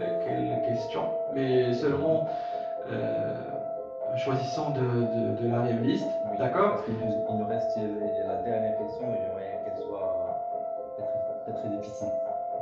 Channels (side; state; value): both; identical; correlation 1.00